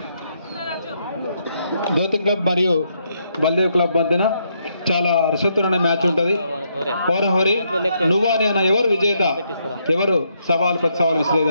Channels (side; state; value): both; inverted; correlation -0.76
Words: జ్యోతి క్లబ్ మరియు బల్దేవ్ క్లబ్ మధ్యన చాలా రసవత్తరమైన మ్యాచ్ ఉంటుంది. హోరహోరి నువ్వా నేనా, ఎవరు విజేత, ఎవరు సవాల్ ప్రతి సవాల్